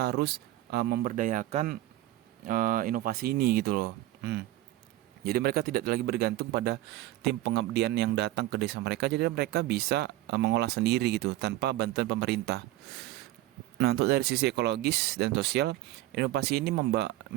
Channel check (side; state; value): left; quieter; 15.5 dB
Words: harus memberdayakan inovasi ini gitu loh. Jadi mereka tidak lagi bergantung pada tim pengabdian yang datang ke desa mereka, jadi mereka bisa mengolah sendiri gitu tanpa bantuan pemerintah. Nah, untuk dari sisi ekologis dan sosial, inovasi ini